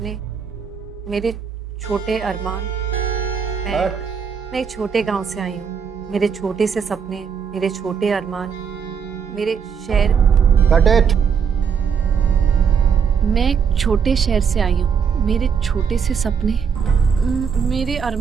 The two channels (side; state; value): left; quieter; 6.7 dB